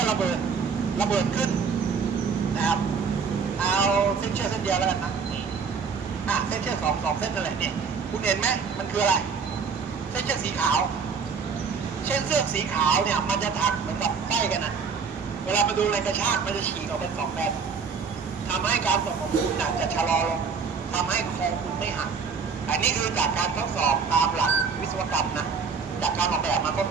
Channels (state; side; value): quieter; left; 5.6 dB